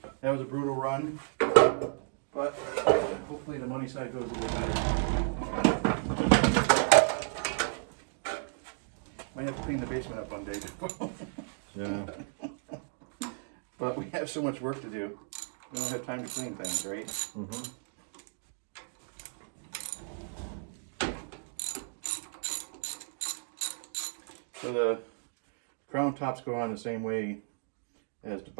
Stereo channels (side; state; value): left; silent; 56 dB below the other